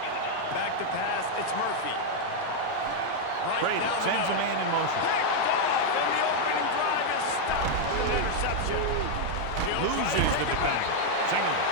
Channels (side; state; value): both; different; correlation 0.00